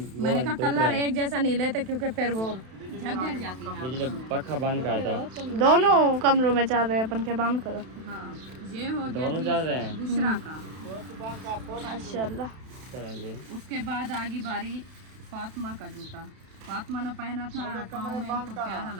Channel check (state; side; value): late; left; 32 ms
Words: मैंने कहा कलर एक जैसा नहीं लेते, क्योंकि फिर वो झग जाती है। बिजली पक्का बंद करता हूँ। दोनों कमरों में चल रहे हैं, अपन के बंद करो। हाँ, ये हो गया दोनों जी चल रहे हैं। बुशरा का। माशाल्लाह। चलें जी। उसके बाद आगी बारी फातिमा का जूता। फातिमा ने पहना था, पाँव में इनको प्यारा